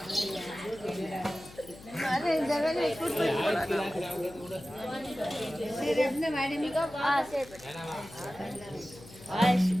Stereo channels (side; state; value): left; noise; hum, 19 dB below the sound